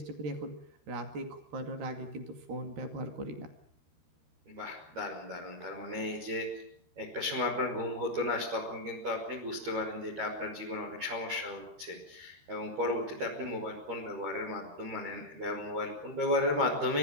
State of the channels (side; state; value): left; late; 13 ms